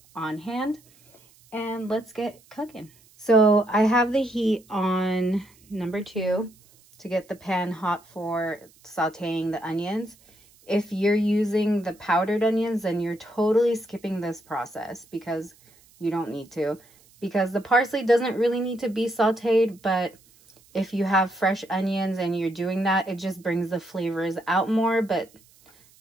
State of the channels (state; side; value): noise; right; hiss, 29 dB below the sound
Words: on hand. And let's get cooking. So I have the heat on number 2 to get the pan hot for sauteing the onions. If you're using the powdered onions, then you're totally skipping this process because you don't need to. Because the parsley doesn't really need to be sauteed, but if you have fresh onions and you're doing that, it just brings the flavors out more. But